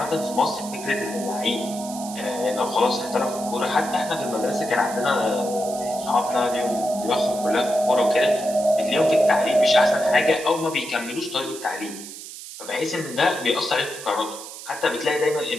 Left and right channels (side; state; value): right; noise; hiss, 12 dB below the sound